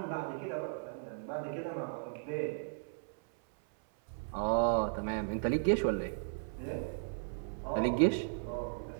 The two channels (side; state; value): left; silent; 54 dB below the other